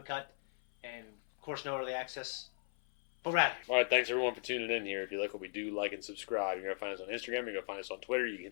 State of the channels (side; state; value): right; silent; 53 dB below the other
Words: and, of course, no early access. But we're out of here. All right, thanks everyone for tuning in here. If you like what we do, like and subscribe. You're going to find us on Instagram. You're going to find us on Twitter. You can